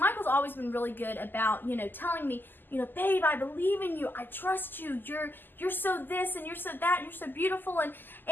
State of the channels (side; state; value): right; late; 0.091 ms